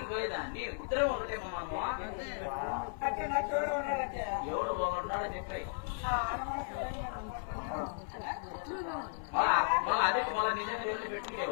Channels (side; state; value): right; silent; 54 dB below the other